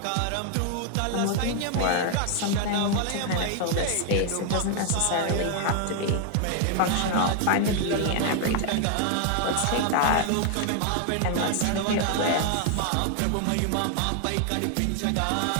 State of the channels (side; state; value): both; different; correlation 0.00